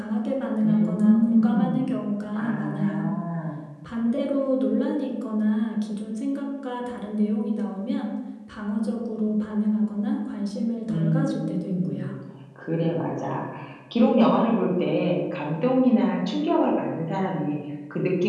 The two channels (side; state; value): both; identical; correlation 1.00